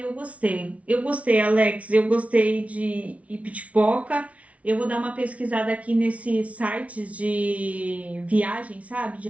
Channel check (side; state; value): left; late; 0.065 ms